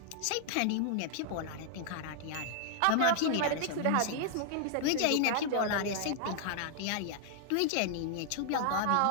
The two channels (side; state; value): both; different; correlation -0.01